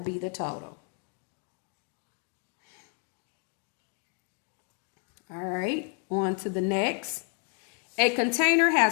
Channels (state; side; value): quieter; right; 39.2 dB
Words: be the total. All right, on to the next. A container